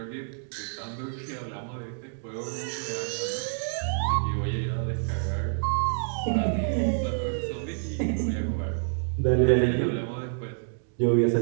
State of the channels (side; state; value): left; silent; digital silence